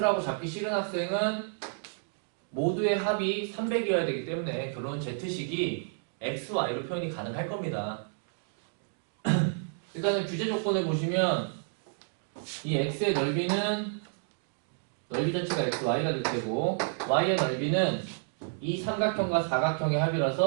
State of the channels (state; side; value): silent; left; digital silence